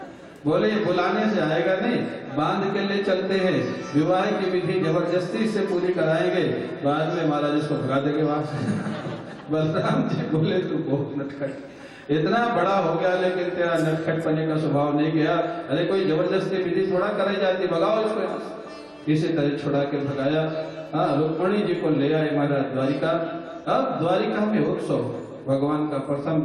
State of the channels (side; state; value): both; identical; correlation 1.00